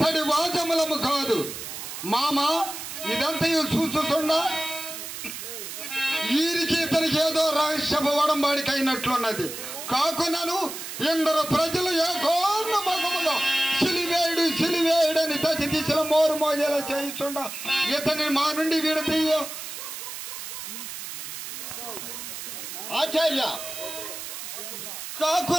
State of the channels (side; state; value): right; noise; hiss, 8 dB below the sound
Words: వాచములము కాదు మామ. ఇదంతయు చూస్తుండా వీరికి ఇతనికి ఏదో రహస్యపు వడంబాడికి అయినట్లున్నది. కాకున్నాను ఎందరో ప్రజలు ఏకోన్మములో సిలివేయుడని దశ దిశలో మోరు మోజేలా చేయిస్తుండా ఇతని మా నుండి విడతీయో. ఆచార్య